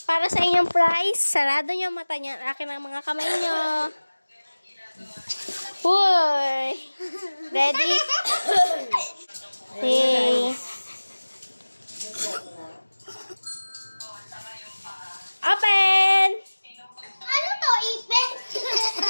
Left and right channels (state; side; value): inverted; both; correlation -1.00